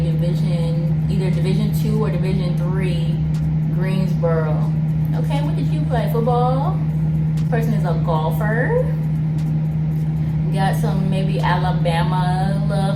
division, either Division 2 or Division 3, Greensboro. Okay, what did you play? Football? This person is a golfer. Got some maybe Alabama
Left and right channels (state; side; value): identical; both; correlation 1.00